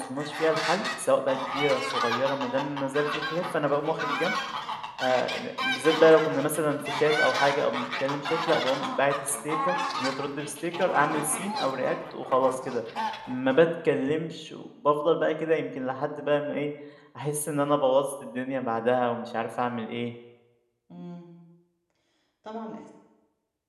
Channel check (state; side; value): identical; both; correlation 1.00